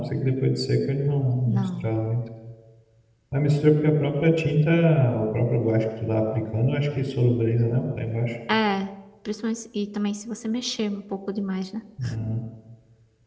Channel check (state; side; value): identical; both; correlation 1.00